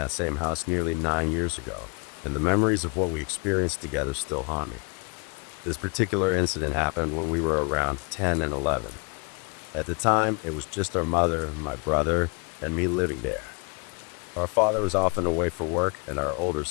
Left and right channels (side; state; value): right; quieter; 34.8 dB